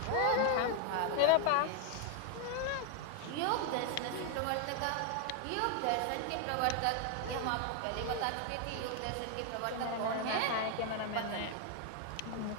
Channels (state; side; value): different; both; correlation 0.00